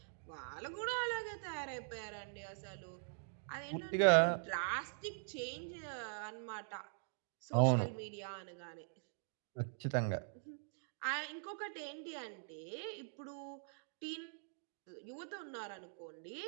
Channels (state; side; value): silent; left; digital silence